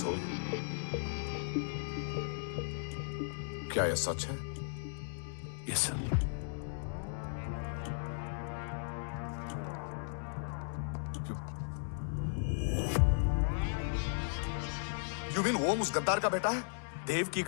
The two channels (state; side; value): silent; right; digital silence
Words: क्या यह सच है? Yes sir. यू मीन ओम उस गद्दार का बेटा है? देव की